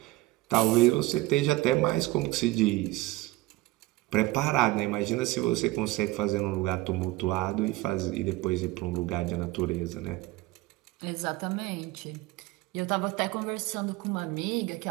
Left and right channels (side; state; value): left; quieter; 19.3 dB